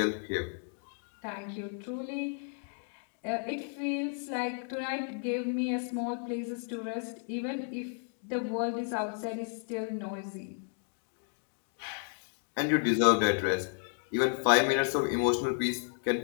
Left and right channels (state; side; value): silent; right; 56 dB below the other